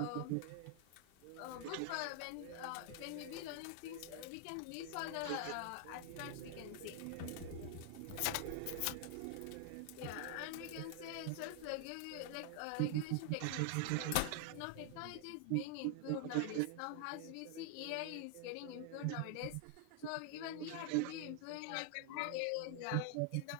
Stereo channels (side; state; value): both; different; correlation 0.00